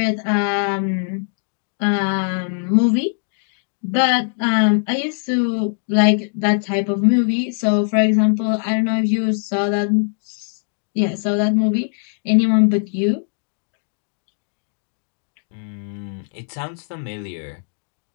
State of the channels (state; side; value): silent; right; digital silence